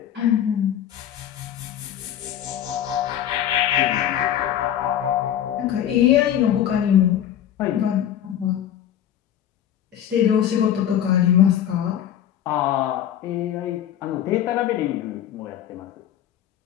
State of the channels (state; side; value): quieter; right; 10.5 dB